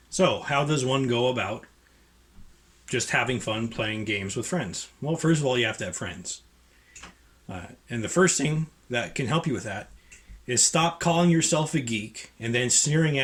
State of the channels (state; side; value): identical; both; correlation 1.00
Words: So, how does one go about just having fun playing games with friends? Well, first of all, you have to have friends. And the first thing that can help you with that is stop calling yourself a geek and then sneering